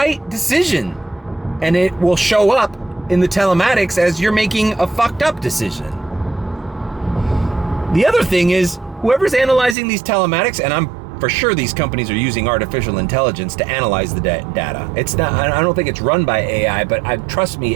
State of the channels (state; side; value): drops out; left; at 9.8 s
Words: decision and it will show up in the telematics as you're making a fucked up decision. The other thing is, whoever's analyzing these telematics, and I'm for sure these companies are using artificial intelligence to analyze the data. It's not, I don't think it's run by AI, but trust me,